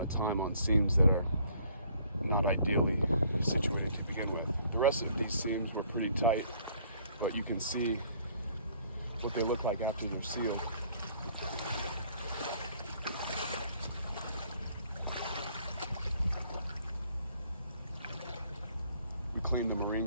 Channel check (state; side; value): inverted; both; correlation -0.61